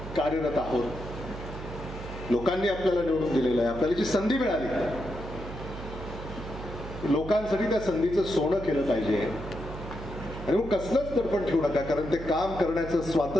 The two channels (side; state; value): right; noise; hum, 10 dB below the sound